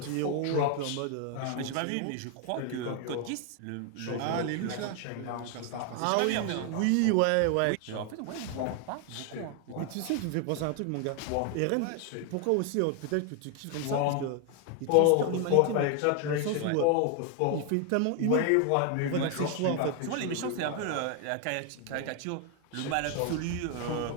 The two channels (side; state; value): both; different; correlation 0.00